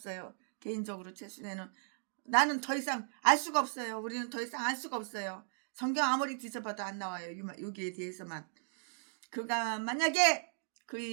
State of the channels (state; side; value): silent; left; digital silence